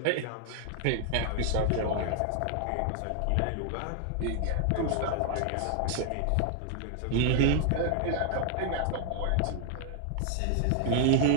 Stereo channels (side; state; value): both; different; correlation 0.00